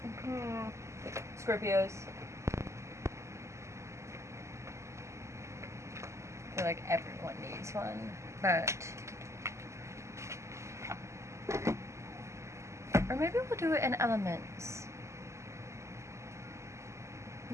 Scorpios. I feel like everyone needs one, but or maybe we'll do it in elements.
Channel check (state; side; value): late; left; 0.13 ms